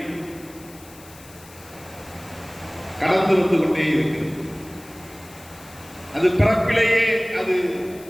கடந்து வந்து கொண்டே இருக்கிறது. அது பிறப்பிலேயே அது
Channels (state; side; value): noise; left; hiss, 21 dB below the sound